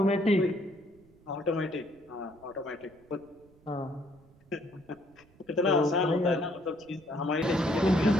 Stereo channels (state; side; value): noise; right; rumble, 28 dB below the sound